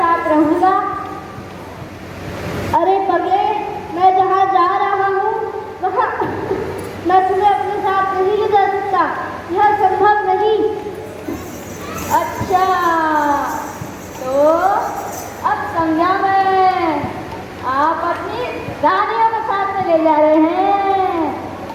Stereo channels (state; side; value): identical; both; correlation 1.00